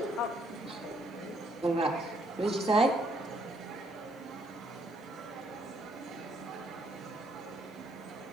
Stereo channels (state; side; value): normal; both; correlation 0.70